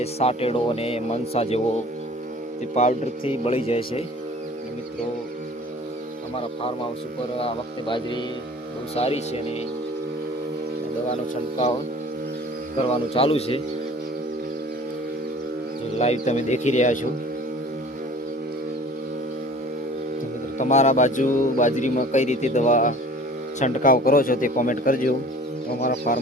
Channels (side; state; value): both; normal; correlation 0.46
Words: સાટેડો અને મનસા જેવો, તે પાવડરથી બળી જાય છે. મિત્રો, અમારા ફાર્મ હાઉસ ઉપર આ વખતે બાજરી બહુ સારી છે અને દવાનો છંટકાવ કરવાનું ચાલુ છે. લાઈવ તમે દેખી રહ્યા છો. તમારા બાજુ બાજરીમાં કઈ રીતે દવા છંટકાવ કરો છો તે કોમેન્ટ કરજો. અમારા